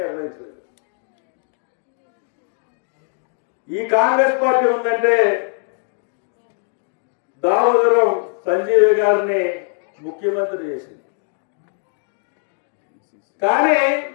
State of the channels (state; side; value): silent; right; 60 dB below the other